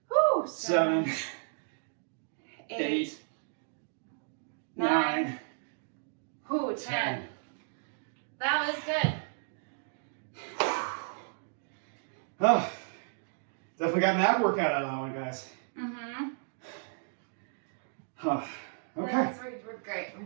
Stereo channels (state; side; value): silent; left; digital silence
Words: 7, 8, 9, 10. That was good. Oh, definitely got an ab workout out of that one, guys. Mm-hmm. Huh. Okay. We're great. We're